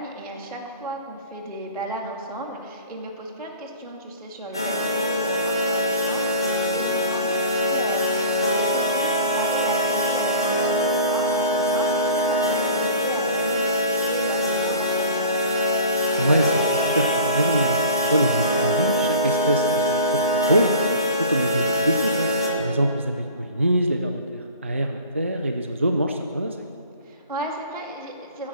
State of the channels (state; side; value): inverted; both; correlation -0.43